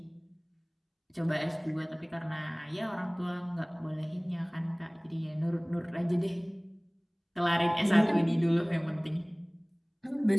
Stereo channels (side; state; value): both; identical; correlation 1.00